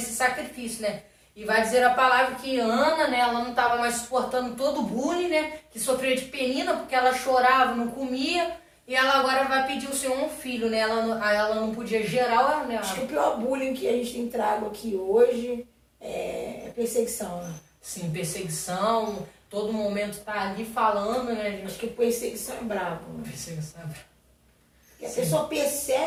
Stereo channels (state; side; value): identical; both; correlation 1.00